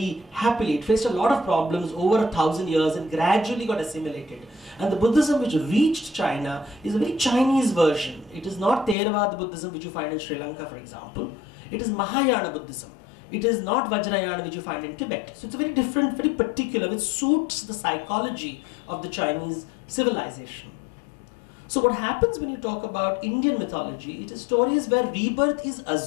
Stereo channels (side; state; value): right; drops out; at 9.0 s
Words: happily. It faced a lot of problems over 1,000 years and gradually got assimilated. And the Buddhism which reached China is a very Chinese version. It is not Theravada Buddhism which you find in Sri Lanka, for example. It is Mahayana Buddhism. It is not Vajrayana which you find in Tibet. So it's a very different, very particular, which suits the psychology of the Chinese civilization. So what happens when you talk about Indian mythology, it is stories where rebirth is